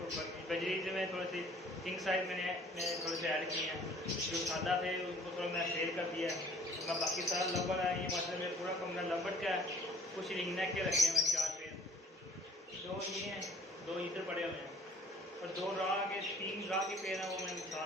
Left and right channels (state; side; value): normal; both; correlation 0.54